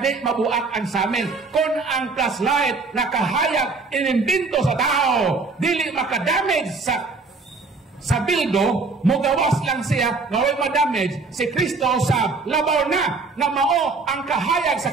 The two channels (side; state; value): left; quieter; 4.0 dB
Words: mabuak ang samin. Kung ang flashlight na kahayag inimbinto sa tao, dili makadamage sa bildo, mugawas lang siya, nga way madamage, si Kristo sa labaw na mao ang kahayag sa